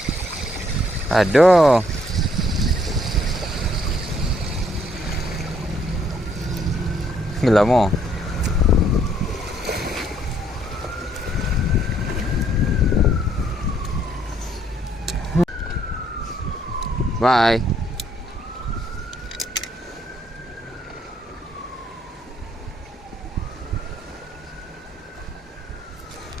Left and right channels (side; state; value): both; normal; correlation 0.68